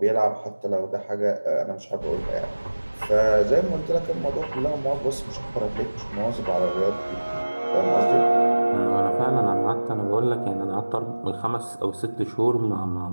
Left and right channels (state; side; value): inverted; both; correlation -1.00